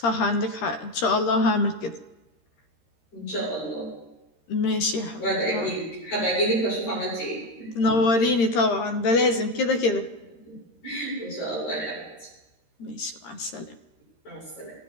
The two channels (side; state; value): right; late; 13 ms